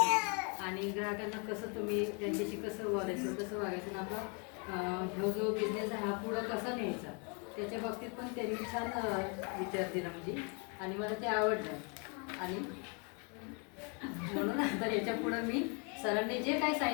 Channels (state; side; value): quieter; right; 35.5 dB